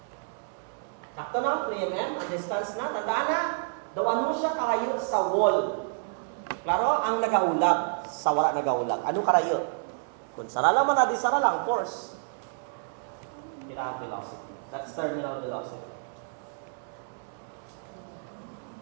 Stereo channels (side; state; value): left; silent; digital silence